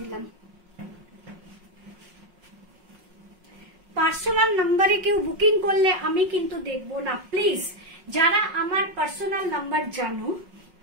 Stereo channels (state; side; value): late; left; 5.5 ms